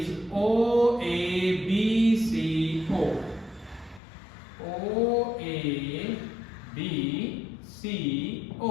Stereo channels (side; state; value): right; drops out; at 4.0 s